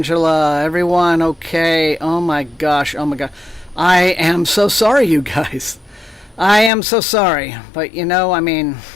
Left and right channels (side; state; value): right; drops out; at 6.7 s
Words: everyone okay? Oh my gosh, oh my god. I am so sorry, you guys. I am so sorry. But I mean,